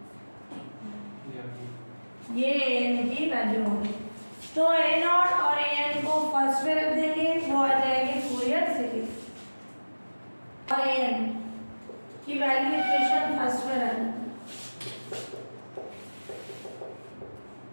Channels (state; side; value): inverted; both; correlation -1.00